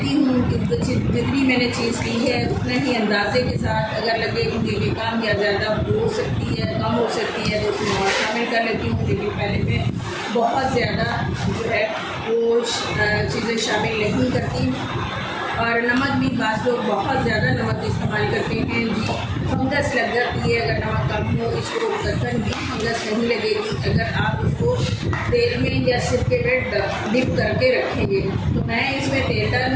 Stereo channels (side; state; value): both; identical; correlation 1.00